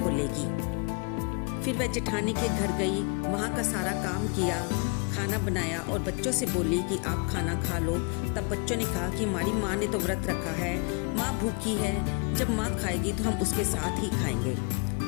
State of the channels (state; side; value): quieter; right; 33.6 dB